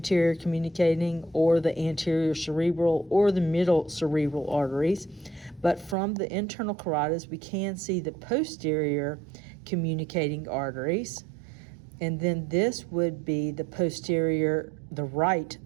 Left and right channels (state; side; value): drops out; left; at 6.0 s